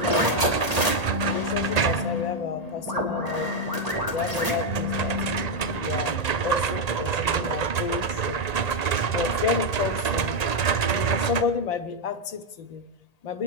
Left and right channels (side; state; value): right; late; 1.8 ms